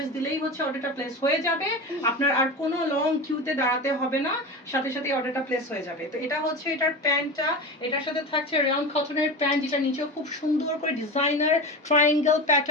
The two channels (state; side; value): normal; both; correlation 0.26